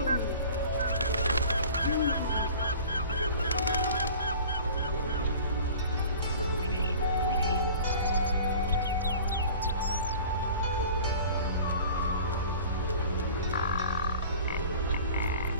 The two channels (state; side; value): inverted; both; correlation -0.43